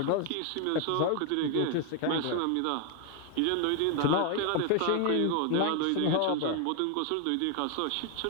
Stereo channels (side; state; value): both; different; correlation 0.00